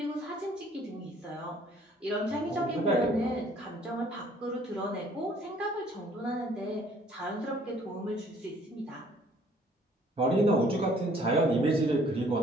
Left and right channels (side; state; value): both; normal; correlation 0.59